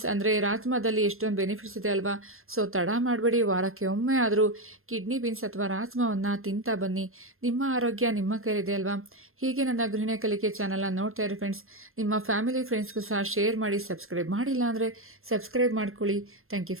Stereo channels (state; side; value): late; left; 0.61 ms